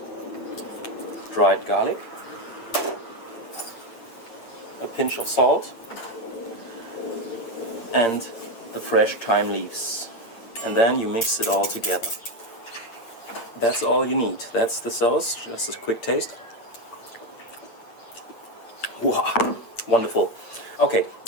dried garlic, a pinch of salt, and the fresh thyme leaves. And then you mix it all together. That's all you need. That's the sauce. Just a quick taste. Wow, wonderful. Okay,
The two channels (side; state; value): right; late; 8.8 ms